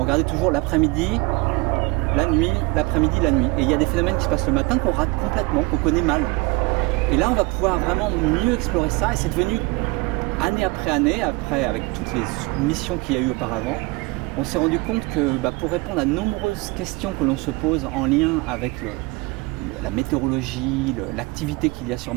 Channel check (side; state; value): left; quieter; 25.1 dB